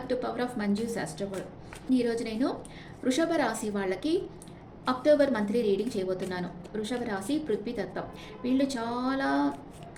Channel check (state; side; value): identical; both; correlation 1.00